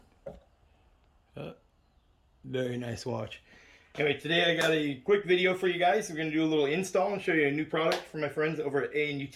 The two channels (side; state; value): both; identical; correlation 1.00